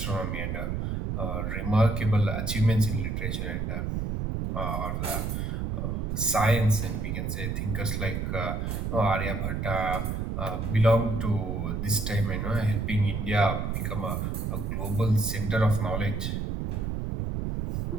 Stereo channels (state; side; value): noise; right; rumble, 2 dB below the sound